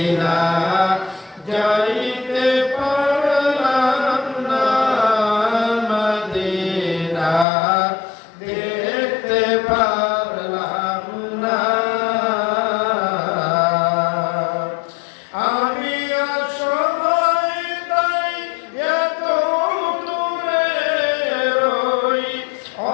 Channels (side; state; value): right; drops out; at 7.5 s